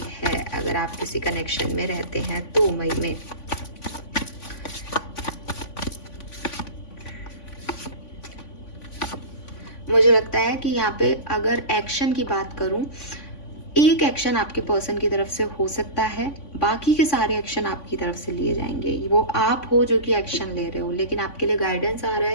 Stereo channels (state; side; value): late; right; 3.5 ms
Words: है। अगर आप किसी कनेक्शन में रहते हैं तो मई में मुझे लगता है कि यहाँ पे अगर एक्शन की बात करूं, एक एक्शन आपके पर्सन की तरफ से हो सकता है, बाकी के सारे एक्शन आपकी तरफ से लिए जाएंगे। वो आप हो जो कि एक्शन ले रहे हो, लेकिन आपके लिए गाइडेंस आ रहा